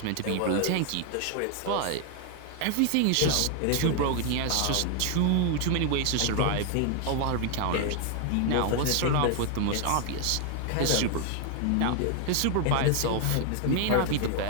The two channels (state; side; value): different; both; correlation 0.00